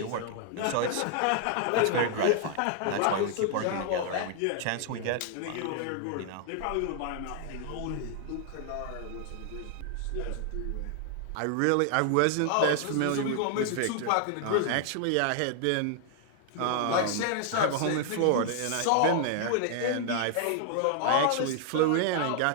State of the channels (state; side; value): different; both; correlation 0.00